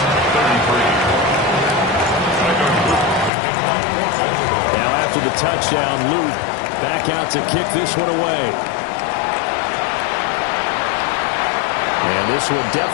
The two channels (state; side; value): drops out; right; at 3.3 s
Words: 33. Now after the touchdown, Luke back out to kick this one away. And this one